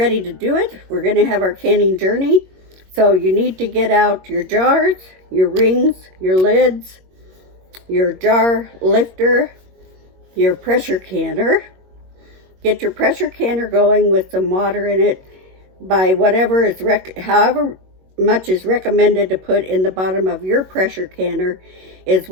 to do it. We're going to have our canning journey. So you need to get out your jars, your rings, your lids, your jar lifter, your pressure canner. Get your pressure canner going with some water in it by whatever is however much is recommended to put in the bottom of your pressure canner is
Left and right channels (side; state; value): left; late; 21 ms